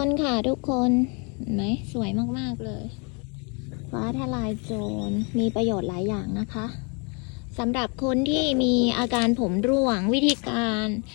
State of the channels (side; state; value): right; quieter; 34.4 dB